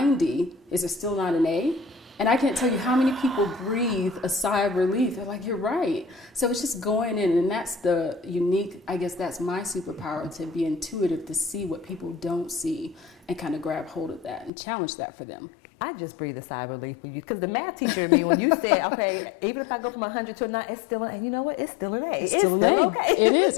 is it still not an A? And I can't tell you how many people breathe a sigh of relief. They're like, you're right. So it's just going in, and that's the unique, I guess that's my superpower, to be intuitive, to see what people don't see and kind of grab hold of that and challenge that for them. I just breathe a sigh of relief for you, because the math teacher in me, when you said, okay, even if I go from 100 to a 9, it's still and you know what? It's still an A. It's still okay. It is.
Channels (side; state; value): right; drops out; at 14.5 s